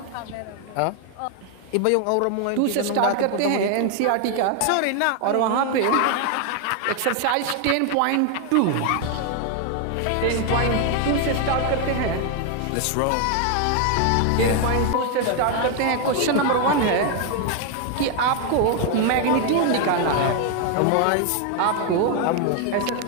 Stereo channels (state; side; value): different; both; correlation 0.01